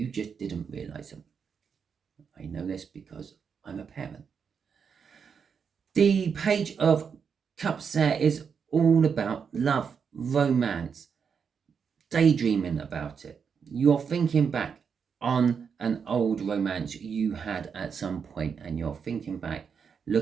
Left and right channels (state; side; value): quieter; left; 6.5 dB